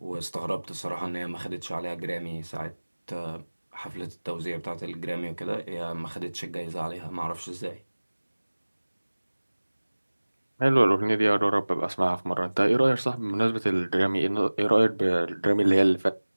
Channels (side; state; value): both; inverted; correlation -1.00